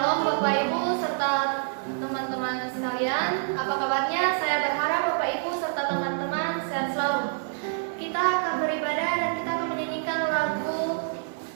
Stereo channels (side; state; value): left; silent; digital silence